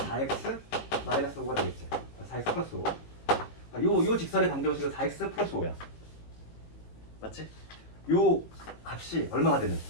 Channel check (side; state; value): right; late; 18 ms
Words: 마이너스 5가 되겠지. 4x 플러스 5. 요 직선의 방정식은 4x 플러스 5야. 맞지? 요 값이 얼마가 되는?